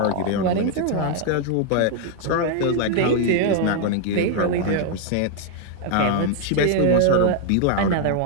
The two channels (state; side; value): different; both; correlation 0.00